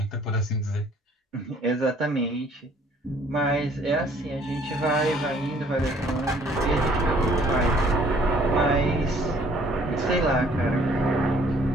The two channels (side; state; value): both; normal; correlation 0.59